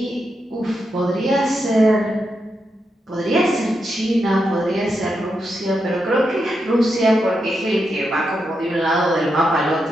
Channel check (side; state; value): both; normal; correlation 0.85